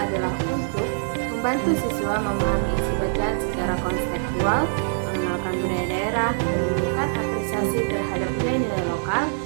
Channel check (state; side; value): silent; left; digital silence